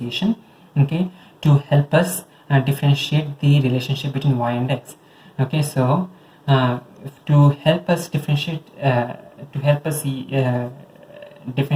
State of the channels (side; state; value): both; identical; correlation 1.00